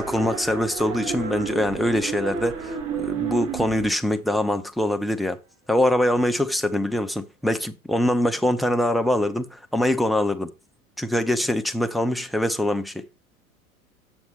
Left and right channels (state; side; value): normal; both; correlation 0.84